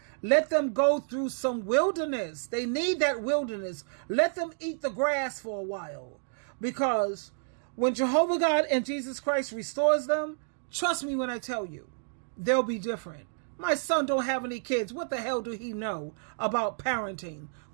Let them go through some wilderness. They need that wilderness. Let them eat the grass for a while. Because when Jehovah God and Jesus Christ restores them, trust me when I tell you, they'll be different. My son don't have any kids. What the hell do he know about parenting?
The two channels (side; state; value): left; silent; digital silence